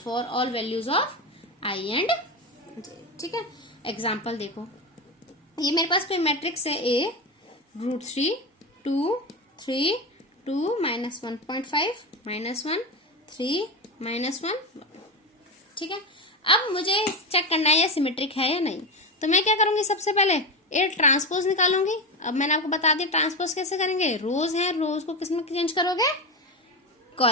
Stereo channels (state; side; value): normal; both; correlation 0.18